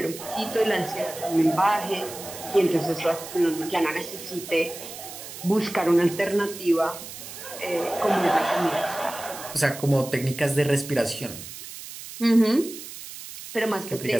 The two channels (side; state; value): right; noise; hiss, 12 dB below the sound